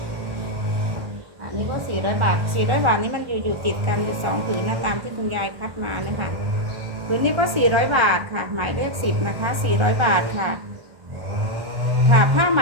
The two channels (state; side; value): late; left; 1.4 ms